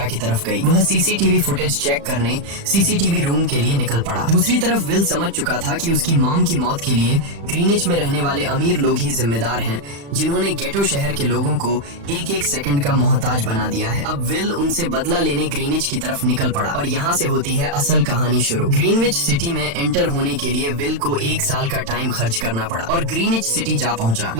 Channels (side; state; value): left; late; 35 ms